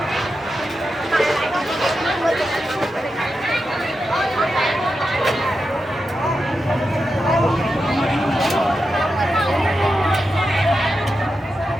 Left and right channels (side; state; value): both; normal; correlation 0.89